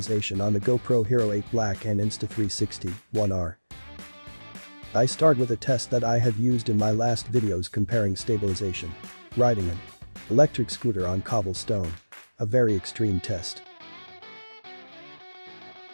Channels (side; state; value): both; inverted; correlation -1.00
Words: on the GoPro Hero 8 Black and Insta360 1R. I start with a test that I have used in my last videos comparing stabilization. Riding an electric scooter on cobblestone. A very extreme test.